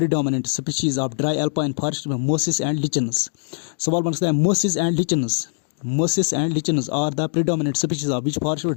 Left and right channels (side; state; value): right; silent; digital silence